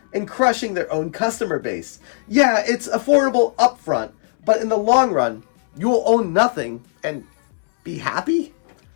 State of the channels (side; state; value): right; silent; 66 dB below the other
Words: in crushing their own customer base. Yeah, it's affordable upfront, but in the long run, you'll own nothing and be happy?